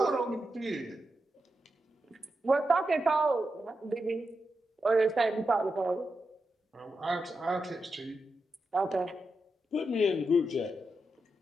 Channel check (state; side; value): normal; both; correlation 0.87